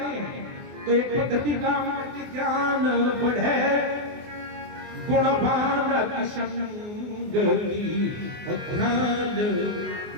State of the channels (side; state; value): left; late; 24 ms